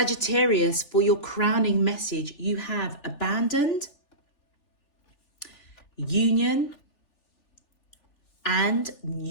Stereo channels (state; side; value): late; right; 3.4 ms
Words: for your crowning message, you have abandoned, union, and